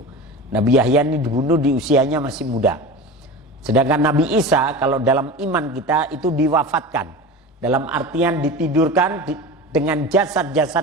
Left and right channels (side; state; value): both; normal; correlation 0.30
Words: Nabi Yahya ini dibunuh di usianya masih muda. Sedangkan Nabi Isa kalau dalam iman kita itu diwafatkan, dalam artian ditidurkan dengan